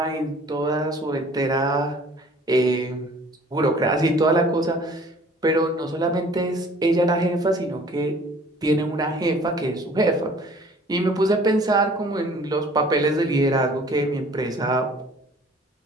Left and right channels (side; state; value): both; normal; correlation 0.52